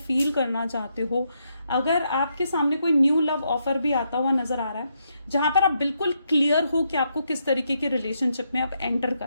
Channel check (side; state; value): both; inverted; correlation -0.79